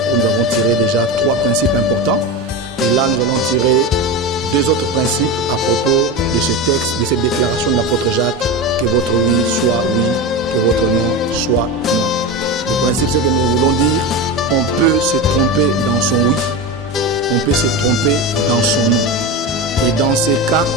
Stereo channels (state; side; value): normal; both; correlation 0.22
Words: où nous avons tiré déjà 3 principes importants. Et là, nous allons tirer 2 autres principes à propos de ce texte, de cette déclaration de l'apôtre Jacques, que votre oui soit oui, que votre non soit non. Le principe, c'est que nous voulons dire, on peut se tromper dans son oui, on peut se tromper dans son non. Et dans ces cas,